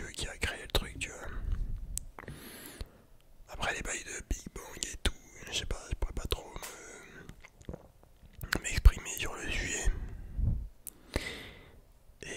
qui a créé le truc, tu vois. Après les bails de Big Bang et tout, je sais pas, je pourrais pas trop m'exprimer sur le sujet.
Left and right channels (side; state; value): both; identical; correlation 1.00